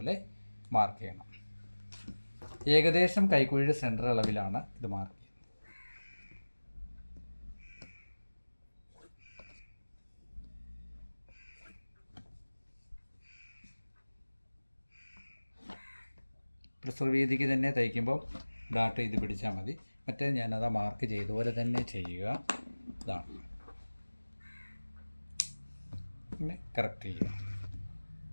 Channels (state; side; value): inverted; both; correlation -1.00